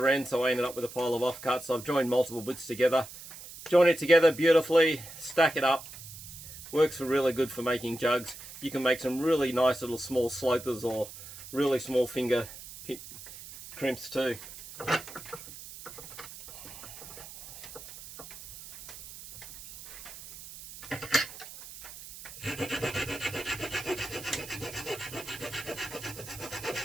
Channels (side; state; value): right; noise; hiss, 14 dB below the sound